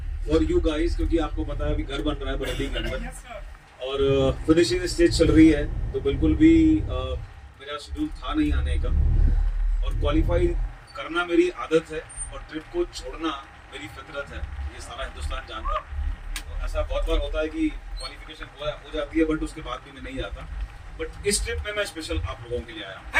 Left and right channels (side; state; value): both; identical; correlation 1.00